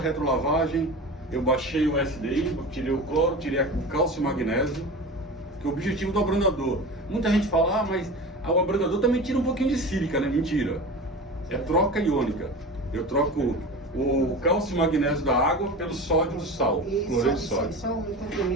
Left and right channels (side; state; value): both; normal; correlation 0.31